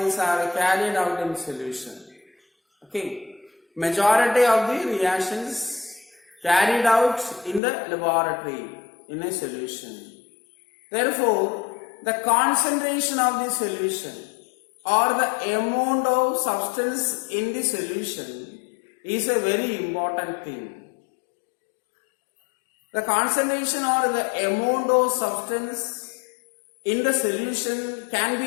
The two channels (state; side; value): drops out; right; at 7.6 s